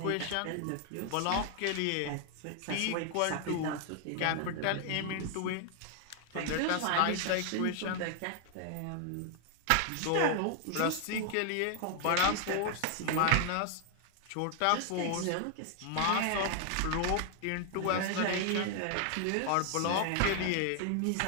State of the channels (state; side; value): different; both; correlation 0.00